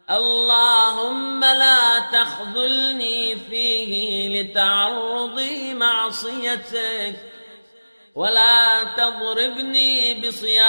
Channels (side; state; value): both; inverted; correlation -1.00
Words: اللهم لا تخذلني فيه لتعرضي معصيتك، ولا تضربني